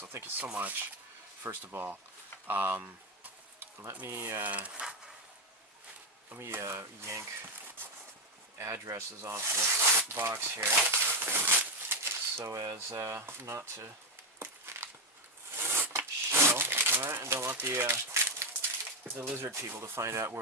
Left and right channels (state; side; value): normal; both; correlation 0.08